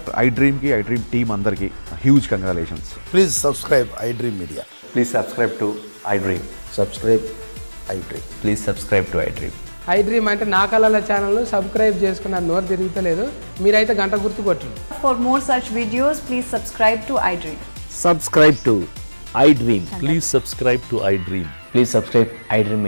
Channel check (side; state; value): both; inverted; correlation -1.00